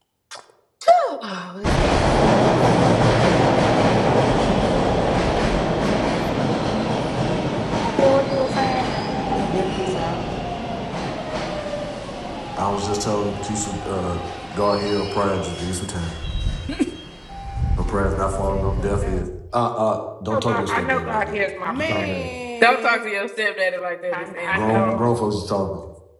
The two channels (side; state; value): both; identical; correlation 1.00